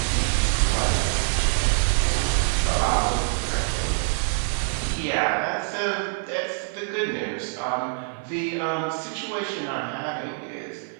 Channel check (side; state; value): left; silent; 61 dB below the other